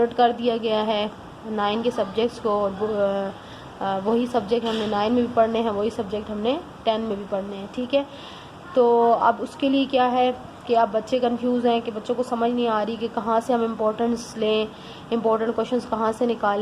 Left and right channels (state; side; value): identical; both; correlation 1.00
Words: कर दिया गया है 9 के सब्जेक्ट्स को और वही सब्जेक्ट हमने 9 में भी पढ़ने हैं, वही सब्जेक्ट हमने 10 में भी पढ़ने हैं। ठीक है, तो अब उसके लिए क्या है कि अब बच्चे कंफ्यूज हैं कि बच्चों को समझ नहीं आ रही कि कहाँ से हम इम्पोर्टेंस लें, इम्पोर्टेंट क्वेश्चंस कहाँ से